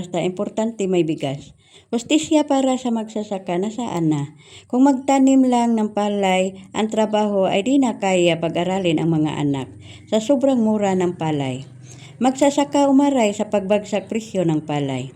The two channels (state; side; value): identical; both; correlation 1.00